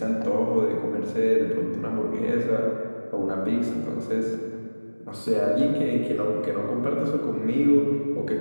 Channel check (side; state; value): both; inverted; correlation -1.00